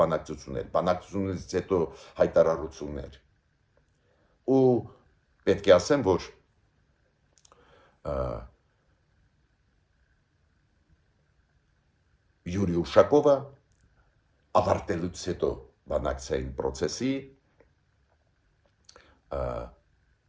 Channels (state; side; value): identical; both; correlation 1.00